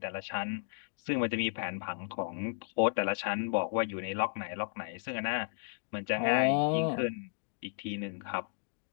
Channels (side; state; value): right; silent; digital silence